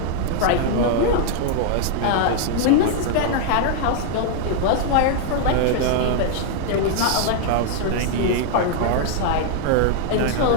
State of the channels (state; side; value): different; both; correlation 0.00